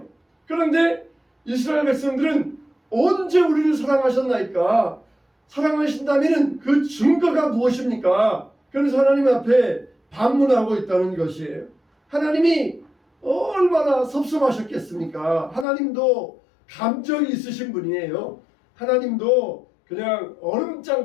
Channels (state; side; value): drops out; right; at 15.7 s